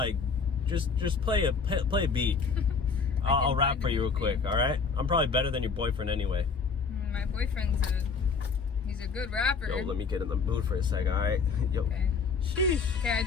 just play a beat. I'll rap for you real quick, all right? I'm probably better than your boyfriend anyway. My boyfriend's he's a good rapper. Yo, let me get in the mood for a second, all right? Yo. Okay. Sheesh. Okay, I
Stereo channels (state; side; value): quieter; right; 5.2 dB